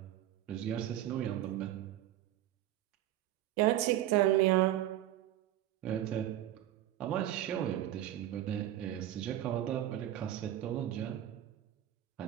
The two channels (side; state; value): left; quieter; 13.0 dB